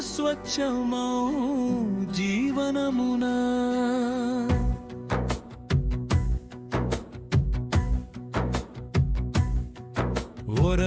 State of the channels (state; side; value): identical; both; correlation 1.00